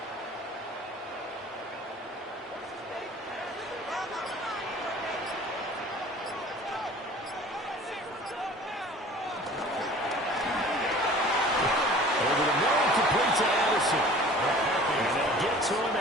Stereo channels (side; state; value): both; normal; correlation 0.46